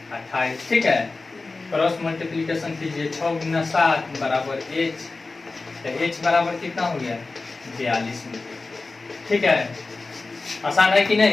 28। ठीक है, क्रॉस मल्टीप्लिकेशन कीजिए, 6 गुना 7 बराबर एच, तो एच बराबर कितना हो गया, 42 मीटर। ठीक है, आसान है कि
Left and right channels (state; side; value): quieter; right; 3.7 dB